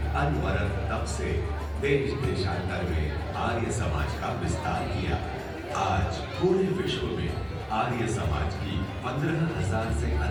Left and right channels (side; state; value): both; identical; correlation 1.00